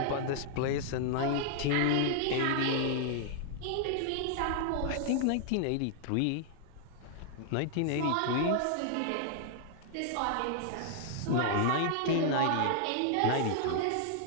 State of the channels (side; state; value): both; different; correlation -0.01